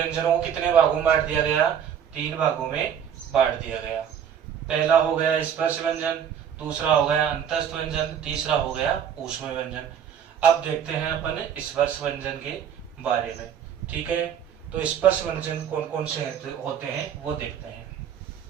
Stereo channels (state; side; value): quieter; left; 8.6 dB